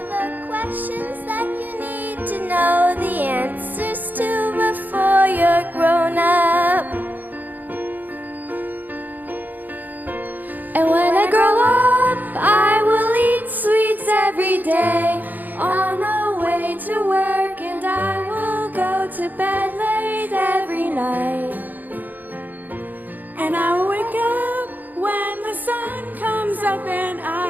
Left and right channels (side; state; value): left; late; 0.084 ms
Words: the questions that you need to know the answers to before you're grown up. And when I grow up, I will eat sweets every day on the way to work, and I will go to bed late every night. And I will wake up when the sun comes up, and